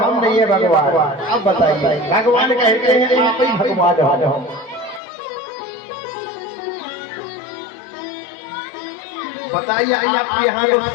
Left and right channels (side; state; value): right; drops out; at 5.0 s